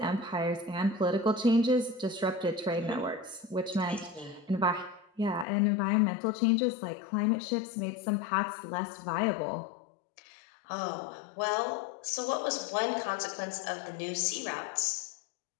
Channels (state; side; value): drops out; right; at 5.5 s